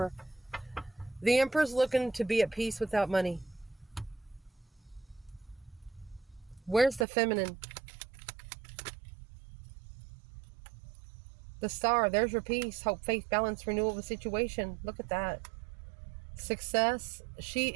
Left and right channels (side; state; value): left; drops out; at 7.1 s